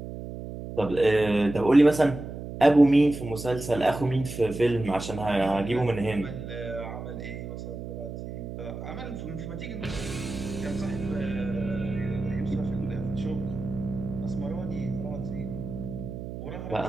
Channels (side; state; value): right; noise; hum, 9 dB below the sound